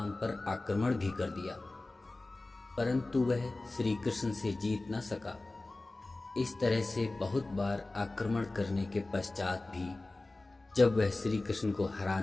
पर आक्रमण भी कर दिया, परंतु वह श्री कृष्ण से जीत न सका। इस तरह से बहुत बार आक्रमण करने के पश्चात भी जब वह श्री कृष्ण को हरा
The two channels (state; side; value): quieter; right; 3.0 dB